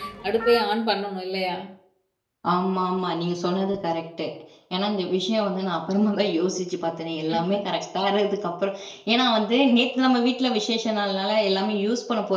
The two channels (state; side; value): identical; both; correlation 1.00